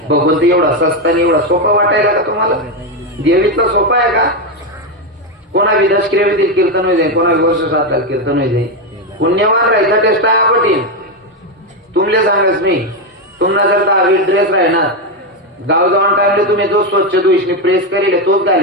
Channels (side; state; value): both; normal; correlation 0.07